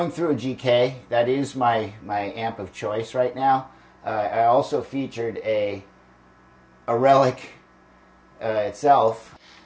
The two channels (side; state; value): both; identical; correlation 1.00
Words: through a GK. That is my amp of choice right now. I also featured a Relic itself.